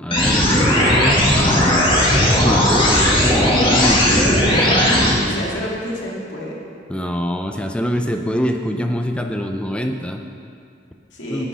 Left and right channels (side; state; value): both; normal; correlation 0.43